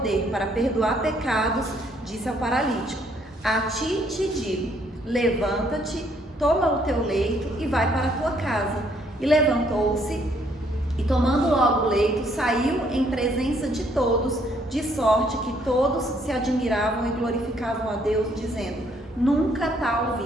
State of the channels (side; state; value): both; normal; correlation 0.67